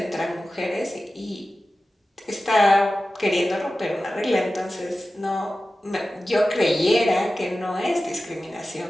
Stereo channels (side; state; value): both; normal; correlation 0.95